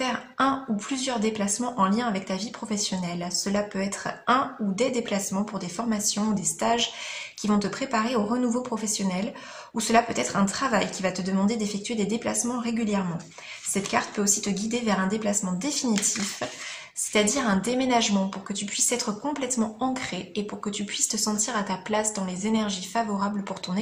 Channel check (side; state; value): both; identical; correlation 1.00